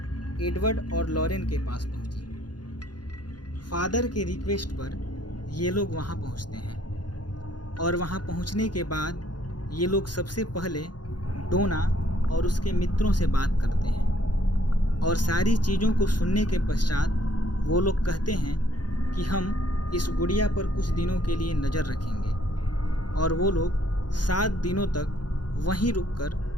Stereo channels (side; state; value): right; late; 0.70 ms